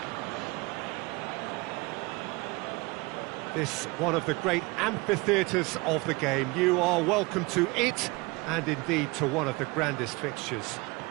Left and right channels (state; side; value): quieter; left; 24.9 dB